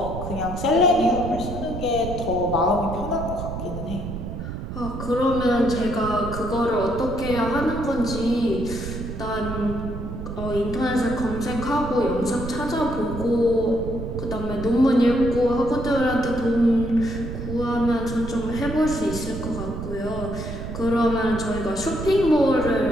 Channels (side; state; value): right; noise; rumble, 7 dB below the sound